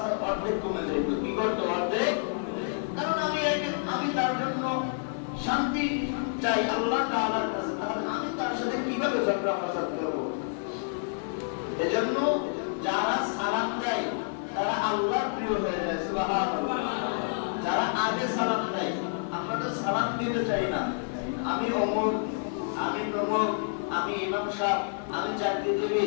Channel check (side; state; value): right; silent; digital silence